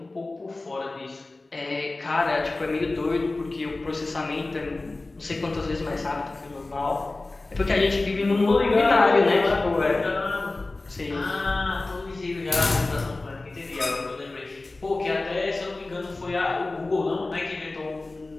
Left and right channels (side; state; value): right; quieter; 3.2 dB